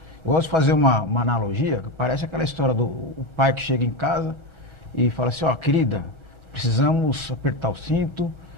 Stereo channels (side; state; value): right; late; 1.4 ms